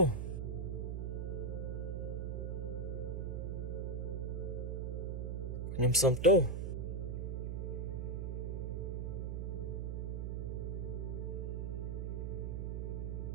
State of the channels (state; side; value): noise; right; hum, 2 dB below the sound